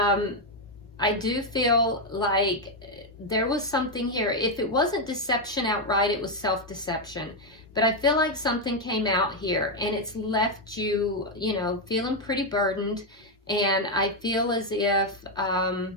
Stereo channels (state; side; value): normal; both; correlation 0.03